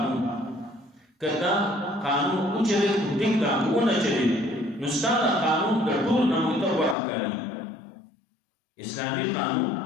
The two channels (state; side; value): drops out; right; at 7.0 s